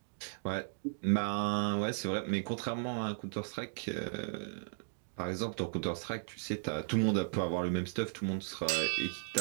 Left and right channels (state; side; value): silent; left; digital silence